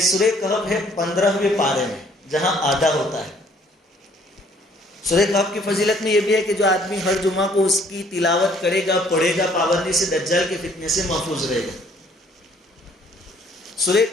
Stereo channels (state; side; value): normal; both; correlation 0.61